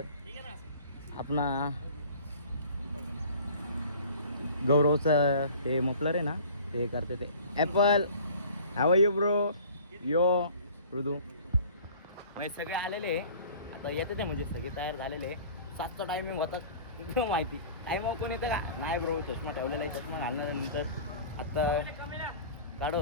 अपना गौरवचं हे मफलर आहे ना, ते करते ते ॲपल. हाव यू ब्रो यो मृदू. म्हणजे सगळे आलेले आता येते ते, म्हणजे सगळे तयार झालेले. 7चा टायमिंग होता माहिती. टायमिंग कोण येतं का नाही ब्रो, चष्मा ठेवलेला आहे. चष्मा घालण्यानंतर आत्ता काढत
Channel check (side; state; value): both; inverted; correlation -0.45